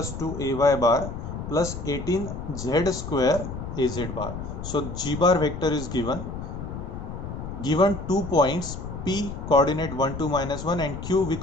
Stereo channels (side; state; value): left; noise; rumble, 8 dB below the sound